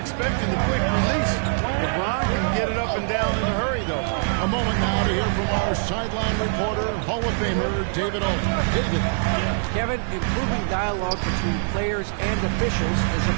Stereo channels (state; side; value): silent; left; digital silence